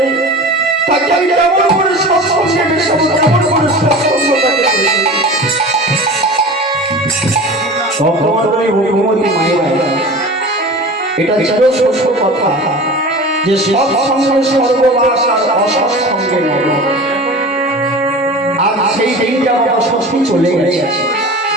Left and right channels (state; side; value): normal; both; correlation 0.35